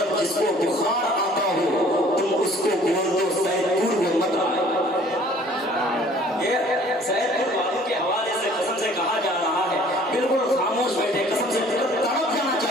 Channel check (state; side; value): normal; both; correlation 0.54